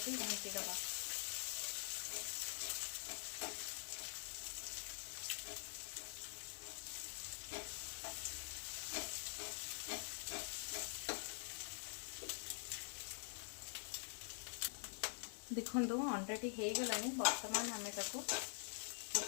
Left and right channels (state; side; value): silent; right; digital silence